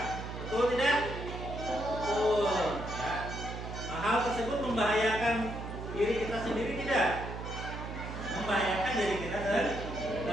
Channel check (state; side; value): noise; right; hum, 7 dB below the sound